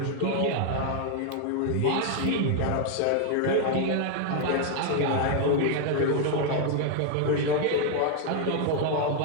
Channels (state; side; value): different; both; correlation 0.00